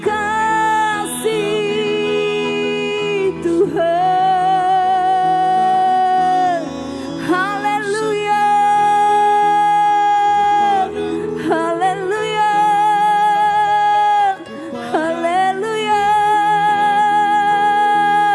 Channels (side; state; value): both; identical; correlation 1.00